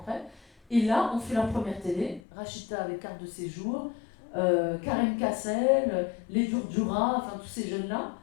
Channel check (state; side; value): drops out; right; at 2.2 s